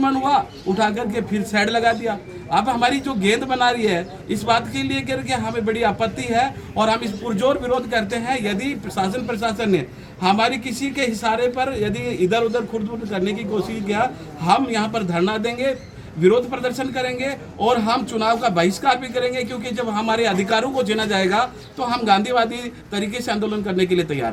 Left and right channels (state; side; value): identical; both; correlation 1.00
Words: हुआ, उठा करके फिर साइड लगा दिया। अब हमारी जो गेंद बना रही है, इस बात के लिए करके हमें बड़ी आपत्ति है और हम इस पुरजोर विरोध करते हैं। यदि प्रशासन ने हमारी किसी के इशारे पर यदि इधर उधर खुर्द करने की कोशिश किया, हम यहाँ पर धरना देंगे, विरोध प्रदर्शन करेंगे और हम चुनाव का बहिष्कार भी करेंगे, क्योंकि जब हमारे अधिकारों को छीना जाएगा तो हम गांधीवादी तरीके से आंदोलन करने के लिए तैयार